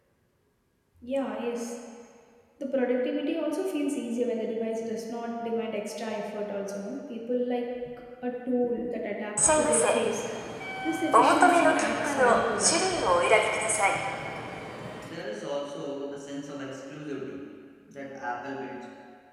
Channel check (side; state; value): both; identical; correlation 1.00